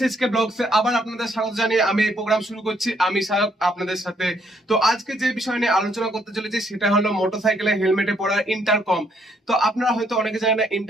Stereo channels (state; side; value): normal; both; correlation 0.70